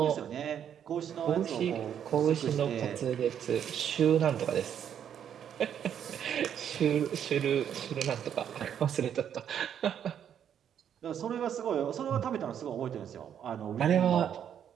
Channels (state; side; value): quieter; left; 9.0 dB